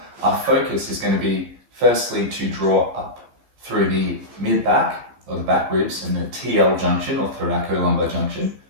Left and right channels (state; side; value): late; left; 15 ms